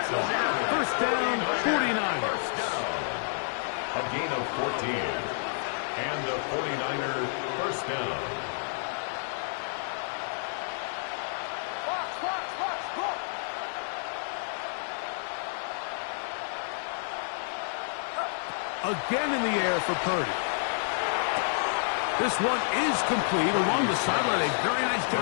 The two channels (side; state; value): right; silent; digital silence